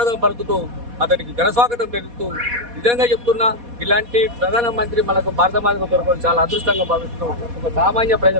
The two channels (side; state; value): left; late; 4.2 ms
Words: పలుకుతూ అతనికి ఘనస్వాగతం పెరుగుతూ నిజంగా చెప్తున్నా, ఇలాంటి ప్రధానమంత్రి మనకు భారత మాతకు దొరకడం చాలా అదృష్టంగా భావిస్తూ ఒక సామాన్య